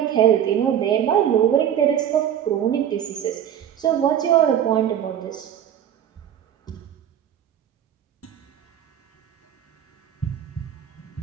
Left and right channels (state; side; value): quieter; left; 9.8 dB